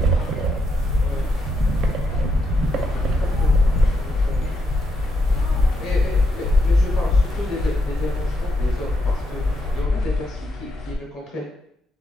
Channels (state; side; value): normal; both; correlation 0.80